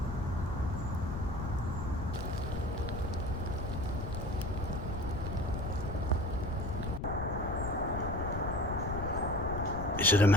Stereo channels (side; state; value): left; noise; rumble, 5 dB below the sound